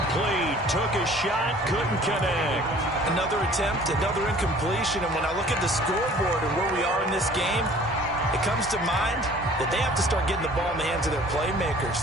Took a shot, couldn't connect. Another attempt, another incompletion. And when I look at the scoreboard and where we are in this game, it comes to mind that they have to start getting the ball in the hands of their playmakers.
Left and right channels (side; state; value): both; normal; correlation 0.51